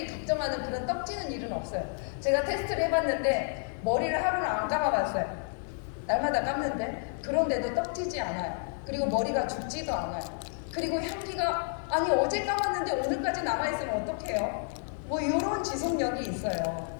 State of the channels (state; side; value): silent; right; 58 dB below the other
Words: 걱정하는 그런 떡지는 일은 없어요. 제가 테스트를 해봤는데 머리를 하루를 안 감아봤어요. 날마다 감는데 그런데도 떡지지 않아요. 그리고 머리가 죽지도 않아요. 그리고 향기가, 아니 어제 감았는데 오늘까지 남아있으면 어떡해요? 뭐 이런 지속력이 있어요.